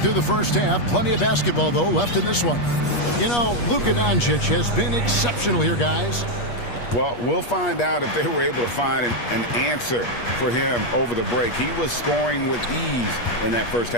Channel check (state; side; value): late; right; 8.4 ms